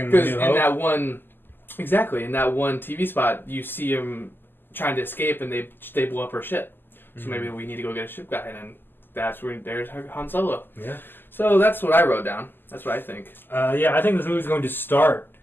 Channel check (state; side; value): late; right; 0.095 ms